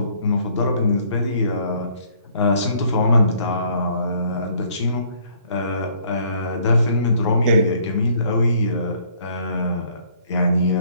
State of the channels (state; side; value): inverted; both; correlation -0.62